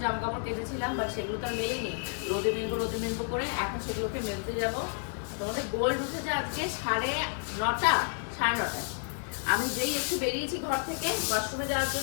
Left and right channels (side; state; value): right; silent; 57 dB below the other